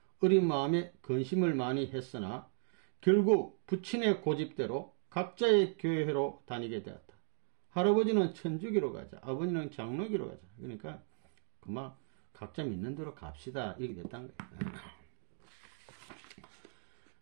어린 마음에 근심을 많이 했으나 결국 부친의 고집대로 각자의 교회로 다니게 되었다. 할아버지는 천주교로 가자, 아버지는 장로교로 가자. 그러니까 그만 각자 믿는 대로 갑시다 이렇게 됐다는 거예요.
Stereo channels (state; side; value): silent; left; digital silence